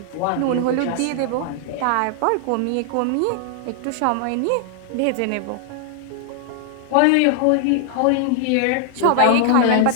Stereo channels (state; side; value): different; both; correlation 0.00